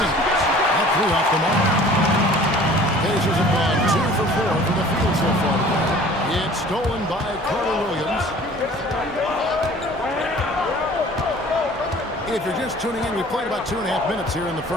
That threw off the mark. Pacers have gone 2 for 4 from the field so far. It's stolen by Carter Williams. If you're just tuning in, we played about 2.5 minutes here in the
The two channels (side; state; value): both; normal; correlation 0.48